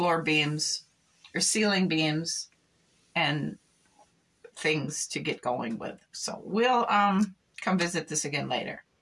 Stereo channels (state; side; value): identical; both; correlation 1.00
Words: beams or ceiling beams and things to get going with. So we'll come visit this again later.